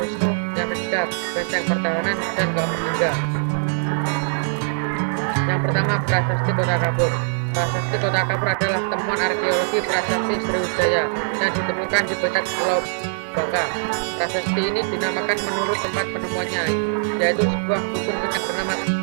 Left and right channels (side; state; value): left; silent; digital silence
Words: Wisnu. Yang ketiga, benteng pertahanan. Dan ketiga, yang pertama, prasasti Kota Kapur. Prasasti Kota Kapur adalah temuan arkeologi prasasti Sriwijaya yang ditemukan di Puncak Pulau Bangka. Prasasti ini dinamakan menurut tempat penemuannya, yaitu sebuah dusun kecil bernama